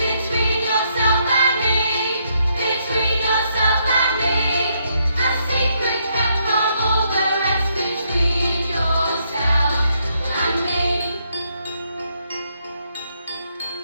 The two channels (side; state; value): both; inverted; correlation -0.75